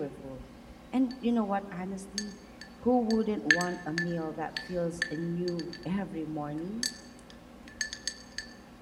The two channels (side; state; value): both; identical; correlation 1.00